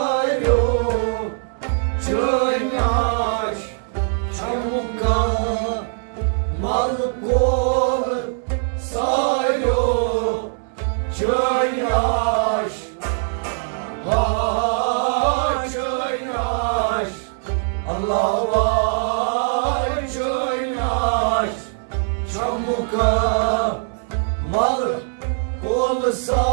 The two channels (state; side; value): silent; left; 65 dB below the other